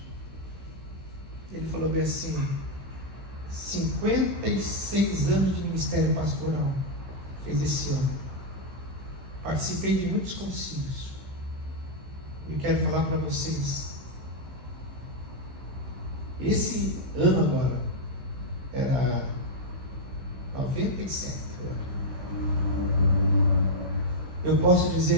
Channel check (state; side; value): late; left; 16 ms